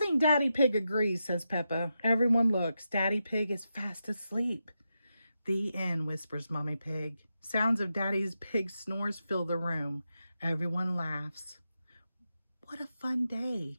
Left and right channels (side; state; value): both; inverted; correlation -0.87